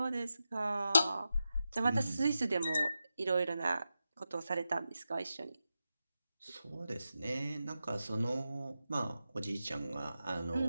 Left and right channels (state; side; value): inverted; both; correlation -0.90